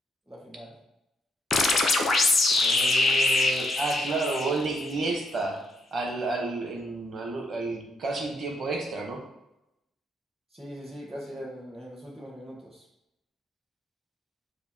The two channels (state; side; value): normal; both; correlation 0.75